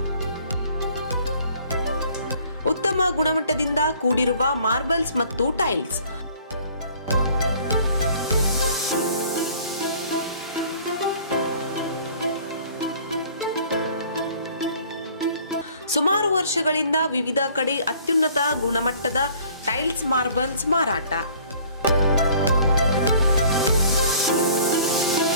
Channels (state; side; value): inverted; both; correlation -0.53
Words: ಉತ್ತಮ ಗುಣಮಟ್ಟದಿಂದ ಕೂಡಿರುವ ಮಾರ್ಬಲ್ಸ್ ಮತ್ತು ಟೈಲ್ಸ್. ಸುಮಾರು ವರ್ಷಗಳಿಂದ ವಿವಿಧ ಕಡೆ ಅತ್ಯುನ್ನತ ಗುಣಮಟ್ಟದ ಟೈಲ್ಸ್ ಮಾರ್ಬಲ್ಸ್ ಮಾರಾಟ.